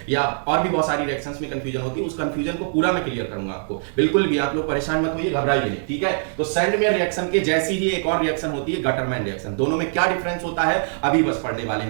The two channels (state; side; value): silent; left; 64 dB below the other